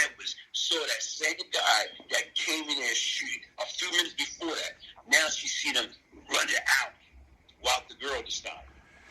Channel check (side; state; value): both; identical; correlation 1.00